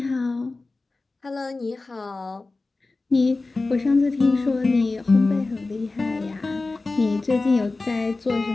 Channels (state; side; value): quieter; right; 3.5 dB